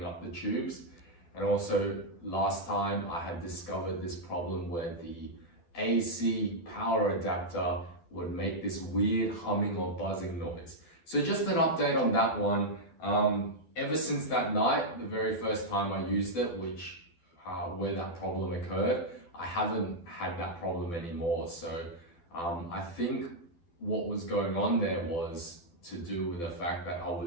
up the tubes. And also last time I had discovered this problem where the AC power adapter would make this weird humming or buzzing noise. So just an update on that one. Ever since that night, the very first time I used it, where that problem occurred, I haven't had that problem anymore. So I think what was going on there was to do with the fact that I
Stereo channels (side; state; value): right; late; 12 ms